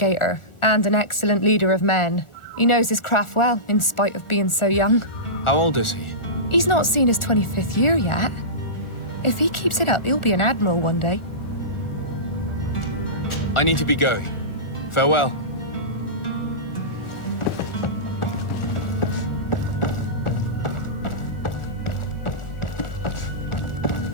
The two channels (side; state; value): right; late; 1.4 ms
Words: and an excellent leader of men. He knows his craft well, in spite of being so young. How old is he? He's not seen his 25th year yet. If he keeps it up, he'll be an admiral one day. I need to be going. Farewell.